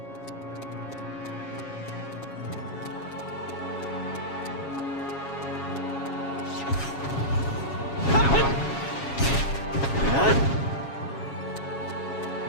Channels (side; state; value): right; late; 7.3 ms